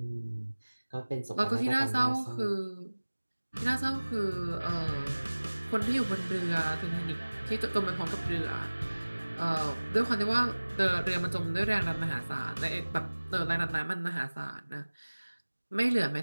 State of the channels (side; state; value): both; inverted; correlation -1.00